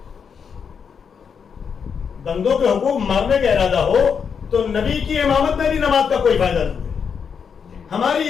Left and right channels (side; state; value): right; quieter; 6.6 dB